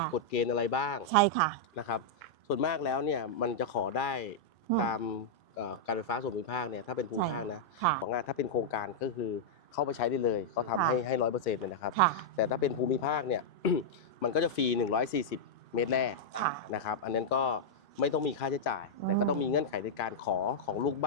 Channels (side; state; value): both; normal; correlation -0.05